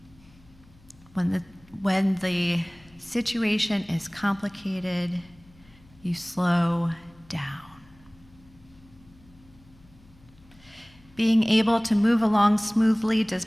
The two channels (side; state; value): left; noise; hum, 27 dB below the sound